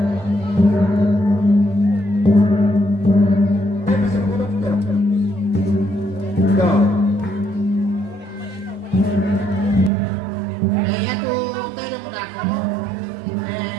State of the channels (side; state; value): left; drops out; at 9.9 s